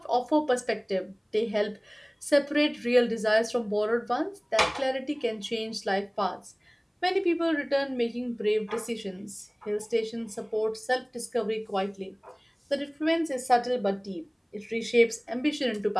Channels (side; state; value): both; identical; correlation 1.00